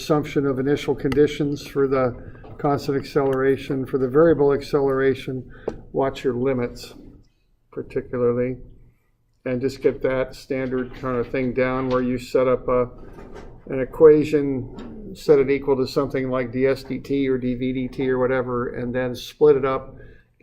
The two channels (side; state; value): both; identical; correlation 1.00